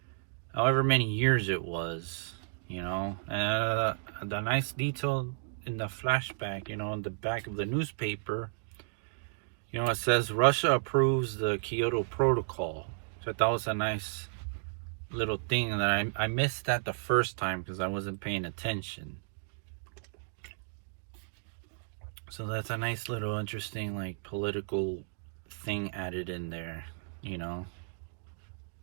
however many years it was. The nice detail in the flashback, in the back of the newspaper, it says Russia approves the Kyoto Protocol. So I thought it was a nice little thing that I missed that the first time because I wasn't paying attention. So that's a nice little interesting like political thing added in there,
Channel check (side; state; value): left; silent; digital silence